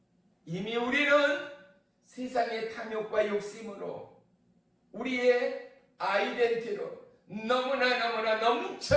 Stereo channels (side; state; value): both; identical; correlation 1.00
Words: 이미 우리는 세상의 탐욕과 욕심으로 우리의 아이덴티로 너무나